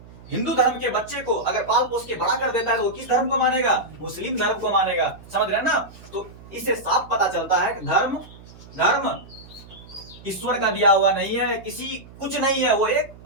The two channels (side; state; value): right; noise; hum, 20 dB below the sound